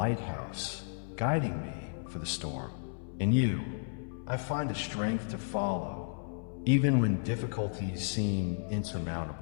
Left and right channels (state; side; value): silent; right; 56 dB below the other